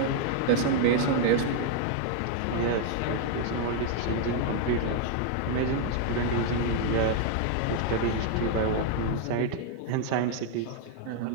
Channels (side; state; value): both; different; correlation 0.00